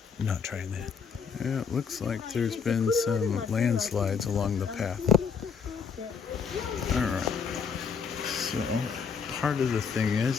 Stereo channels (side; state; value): right; quieter; 6.2 dB